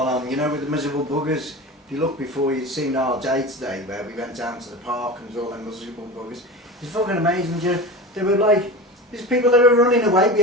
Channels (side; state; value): both; normal; correlation 0.29